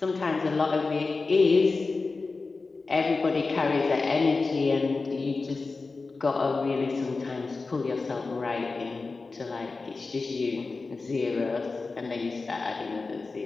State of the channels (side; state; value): right; quieter; 3.9 dB